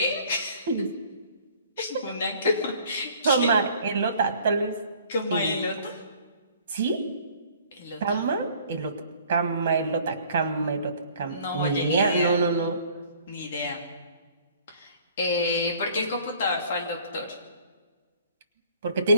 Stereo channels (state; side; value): inverted; both; correlation -0.55